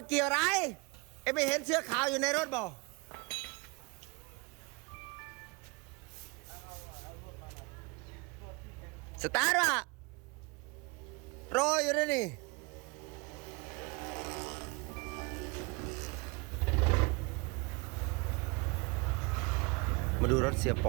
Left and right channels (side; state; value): left; quieter; 27.8 dB